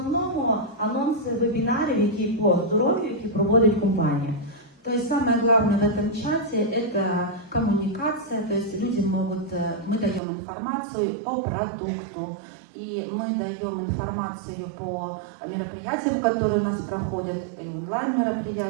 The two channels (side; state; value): left; drops out; at 10.2 s